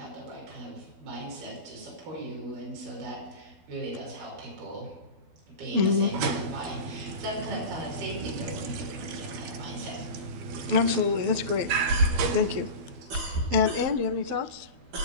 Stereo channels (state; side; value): late; left; 12 ms